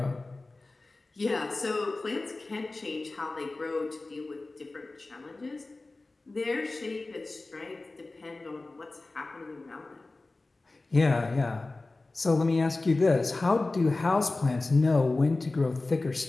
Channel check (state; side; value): quieter; right; 3.2 dB